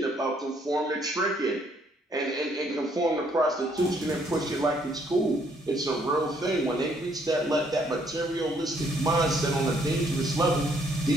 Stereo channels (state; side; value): normal; both; correlation 0.68